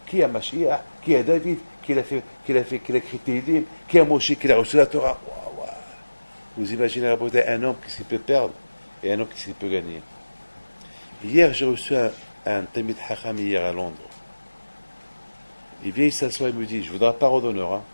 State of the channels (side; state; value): both; inverted; correlation -1.00